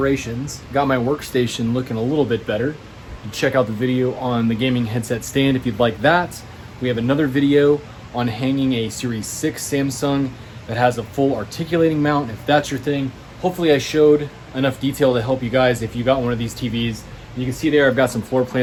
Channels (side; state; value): both; identical; correlation 1.00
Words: got my workstation looking a little bit better. You can check out the video on the gaming headset stand if you'd like that. We have another video on hanging a Series 6 Samsung that has a full articulating mount, if that's your thing. Hopefully I showed enough detail to help you guys if you got one of these TVs. You can see there I've got some floor